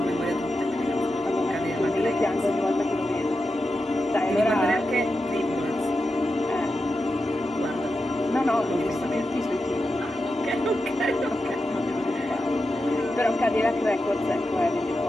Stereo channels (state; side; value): normal; both; correlation 0.89